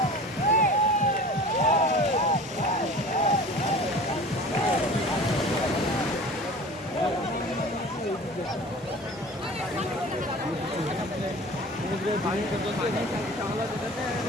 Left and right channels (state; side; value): normal; both; correlation 0.40